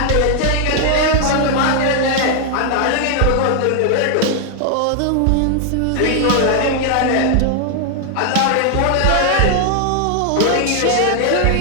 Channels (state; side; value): different; both; correlation 0.00